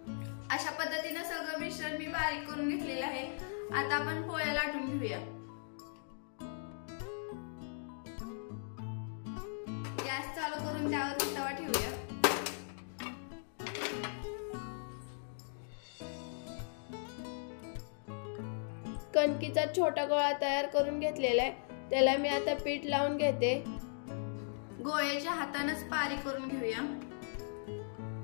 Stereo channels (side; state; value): right; silent; digital silence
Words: अशा पद्धतीने सगळं मिश्रण मी बारीक करून घेतलेलं आहे। आता आपण पोळ्या लाटून घेऊया। गॅस चालू करून त्यावर तवा ठेवूया। कणकीचा छोटा गोळा तयार करून घेतलेला आहे, त्याला मी आता पीठ लावून घेते। गोळ्याच्या हातानेच पारी करून घेऊया।